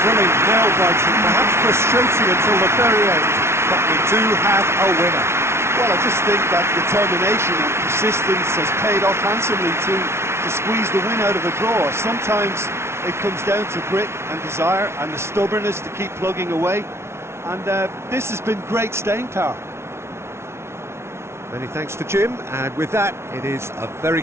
Thrilling, nail-biting, perhaps frustrating until the very end, but we do have a winner. Well, I just think that determination and persistence has paid off handsomely to squeeze the win out of a draw. Sometimes it comes down to grit and desire and the stubbornness to keep plugging away. And this has been great staying power. Many thanks to Jim, and with that, it is a very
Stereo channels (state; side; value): late; left; 0.13 ms